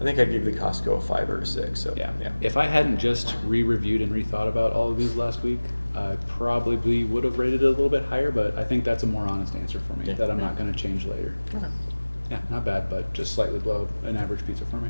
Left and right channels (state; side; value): inverted; both; correlation -1.00